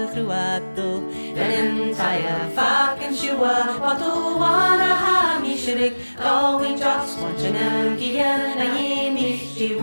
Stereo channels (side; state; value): both; inverted; correlation -1.00